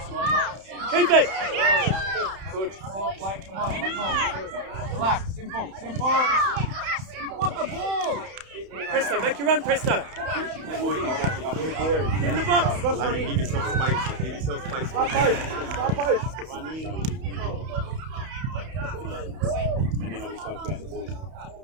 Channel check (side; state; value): left; late; 31 ms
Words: Keep it. Good. Ball, play, come on, simple. Relax, simple, simple. What the ball? Presto, make your run, Presto. Get in the box. I mean, give yourself space. Give yourself space. Stop post, stop post. And then we spoke about the ball.